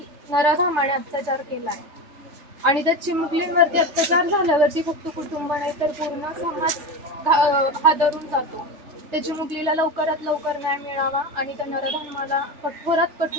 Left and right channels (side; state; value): left; late; 3.3 ms